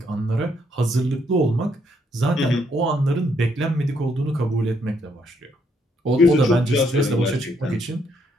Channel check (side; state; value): both; normal; correlation 0.73